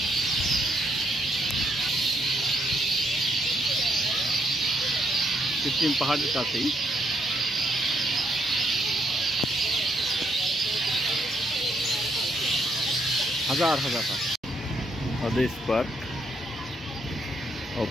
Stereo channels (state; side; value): normal; both; correlation 0.74